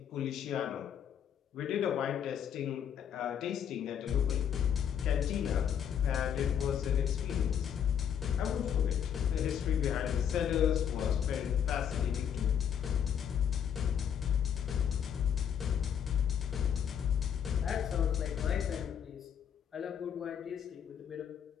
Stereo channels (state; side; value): quieter; right; 8.5 dB